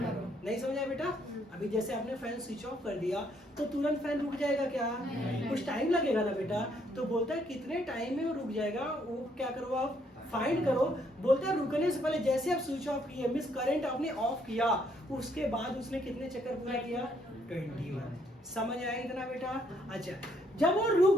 नहीं समझा बेटा? अभी जैसे आपने फैन स्विच ऑफ कर दिया तो तुरंत फैन रुक जाएगा क्या? कुछ टाइम लगेगा ना बेटा। तो बोलता है कितने टाइम में वो रुक जाएगा, वो क्या करो आप? फाइंड करो। बोलता है रुकने से पहले जैसे आप स्विच ऑफ किए, मिस करंट आपने ऑफ किया, उसके बाद उसने कितने चक्कर पूरा किया? 21। समझ आया इतना बेटा? अच्छा जब वो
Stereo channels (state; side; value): normal; both; correlation 0.70